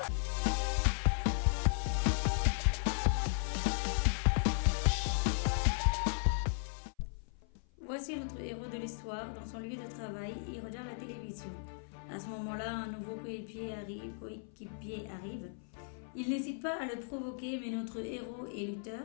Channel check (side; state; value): right; silent; 54 dB below the other